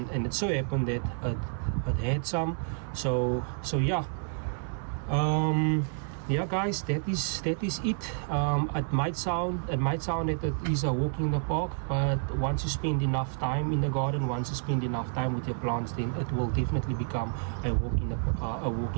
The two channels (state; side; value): silent; left; 58 dB below the other